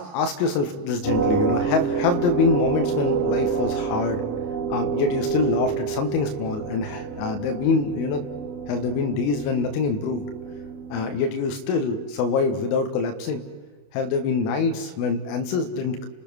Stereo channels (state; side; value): late; right; 28 ms